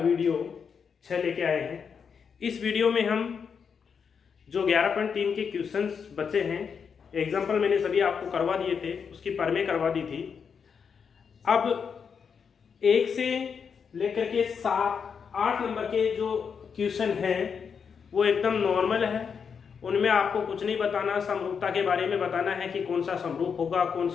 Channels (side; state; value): right; quieter; 6.4 dB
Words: 6 लेके आए हैं। इस वीडियो में हम जो 11.3 के क्वेश्चंस बचे हैं, एग्जाम्पल मैंने सभी आपको करवा दिए थे, उसकी परमें करवा दी थी। अब 1 से लेकर के 7-8 नंबर के जो क्वेश्चन हैं वो एकदम नॉर्मल है। उनमें आपको कुछ नहीं बताना, समरूपता के बारे में बताना है कि कौन सा समरूप होगा कौन